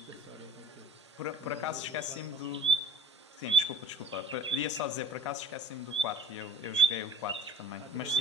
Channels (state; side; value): normal; both; correlation 0.48